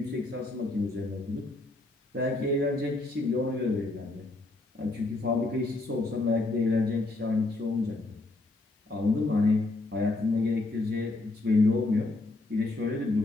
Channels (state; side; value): quieter; right; 3.0 dB